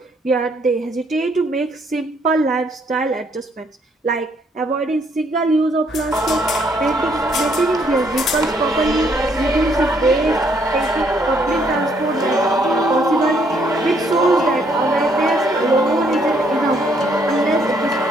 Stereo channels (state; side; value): normal; both; correlation 0.69